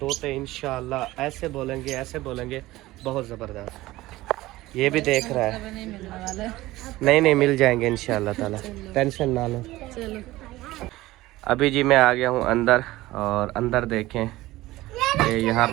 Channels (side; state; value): left; quieter; 17.7 dB